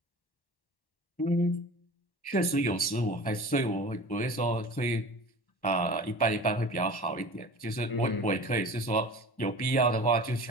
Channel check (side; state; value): right; late; 1.1 ms